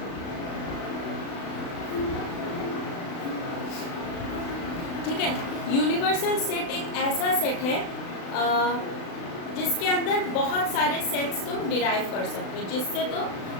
ठीक है, यूनिवर्सल सेट एक ऐसा सेट है जिसके अंदर बहुत सारे सेट्स तुम डिराइव कर सकते हो, जिससे तो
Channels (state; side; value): late; right; 36 ms